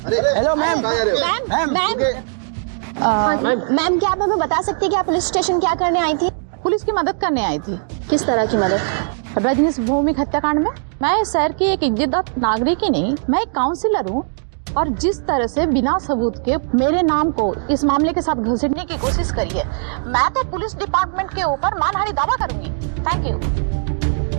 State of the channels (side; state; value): left; silent; digital silence